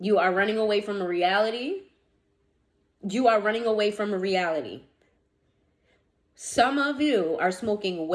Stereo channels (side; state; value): both; identical; correlation 1.00